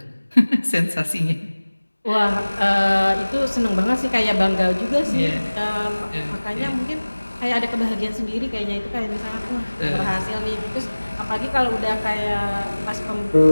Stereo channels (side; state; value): both; inverted; correlation -1.00